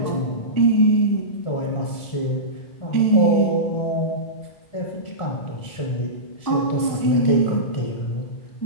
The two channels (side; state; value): right; late; 1.5 ms